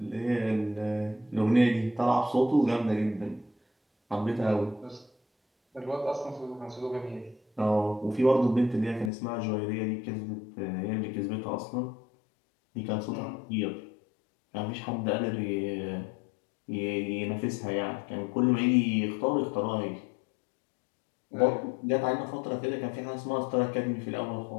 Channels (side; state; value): right; drops out; at 9.1 s